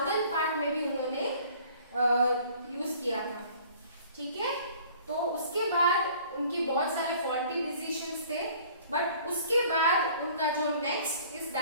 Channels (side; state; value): both; inverted; correlation -0.52